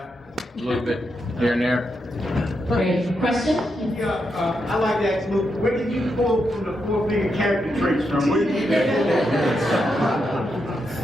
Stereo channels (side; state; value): both; normal; correlation 0.83